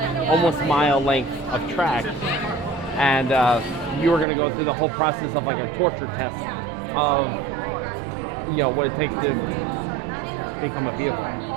almost mile length of track, and you were going to go through the whole process of like a torture test of what it takes to become a vehicle.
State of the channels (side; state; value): left; drops out; at 4.2 s